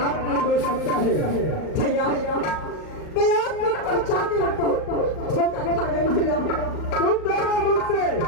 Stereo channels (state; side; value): late; right; 38 ms